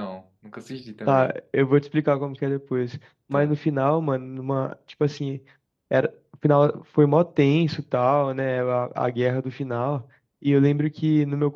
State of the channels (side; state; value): both; identical; correlation 1.00